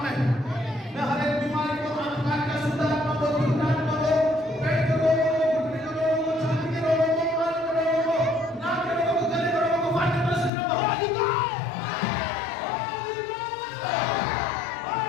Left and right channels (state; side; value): drops out; right; at 10.5 s